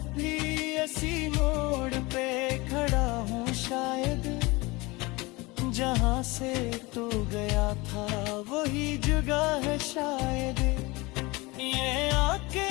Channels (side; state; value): right; quieter; 23.6 dB